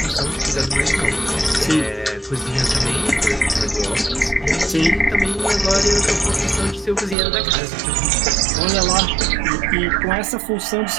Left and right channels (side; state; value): left; drops out; at 7.2 s